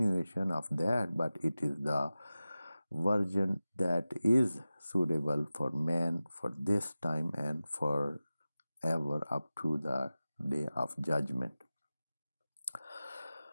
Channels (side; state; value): both; inverted; correlation -0.96